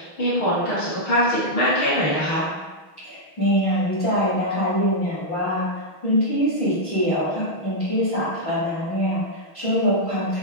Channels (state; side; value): late; right; 6.3 ms